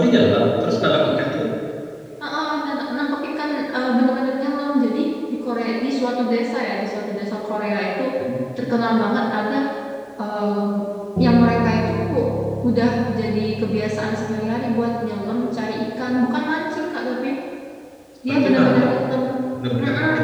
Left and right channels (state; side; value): identical; both; correlation 1.00